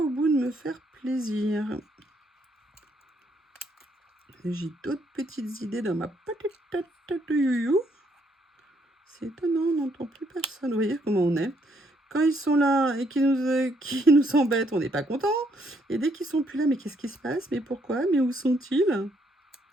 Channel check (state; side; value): normal; both; correlation 0.71